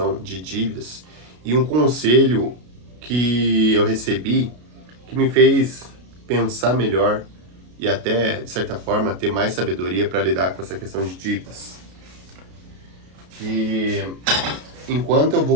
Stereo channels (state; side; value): late; left; 33 ms